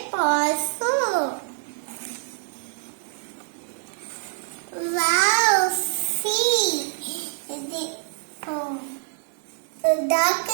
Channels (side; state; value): left; silent; 61 dB below the other